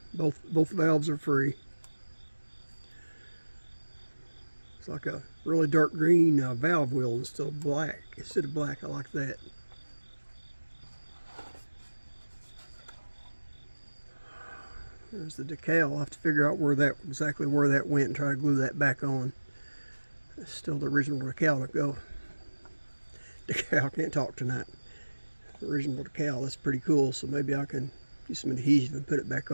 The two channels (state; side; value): inverted; both; correlation -1.00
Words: Both valves are free. It's like a really dark green valve wheel instead of black. I like that. There's the decal. I'll have to figure out exactly where that went and try to glue that back on. That's still the original decal to go. Decal, can't talk tonight. The original decal, that's pretty cool. So maybe I can use some adhesive and put it back